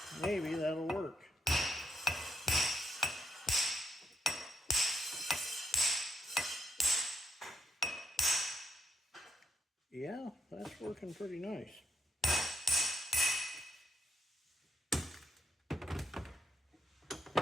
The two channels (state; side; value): normal; both; correlation 0.78